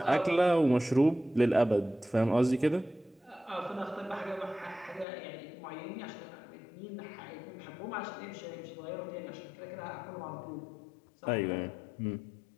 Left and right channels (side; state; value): right; drops out; at 5.1 s